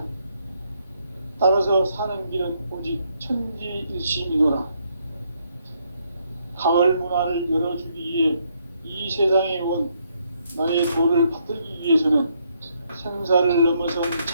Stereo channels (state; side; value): inverted; both; correlation -0.74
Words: 따라서 사는 길은 오직 천지일심이노라. 가을 문화를 열어주기 위해 이 세상에 온 나의 도를 받들기 위해서는 생사를 넘어선